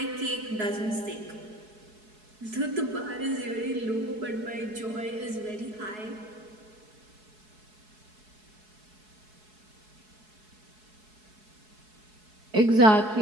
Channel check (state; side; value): late; left; 4.7 ms